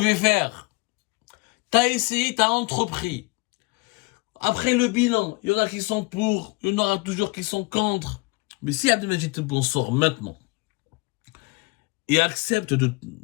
faire, t'as essayé, t'as entrepris. Après le bilan, il y en a qui sont pour, il y en aura toujours qui sont contre. Mais si Abdelmajid Tebboune sort maintenant et accepte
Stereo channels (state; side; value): quieter; right; 27.1 dB